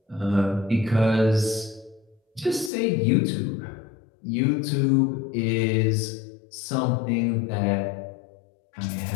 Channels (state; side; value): drops out; right; at 2.7 s